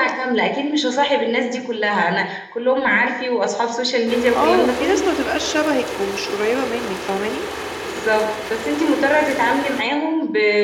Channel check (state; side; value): identical; both; correlation 1.00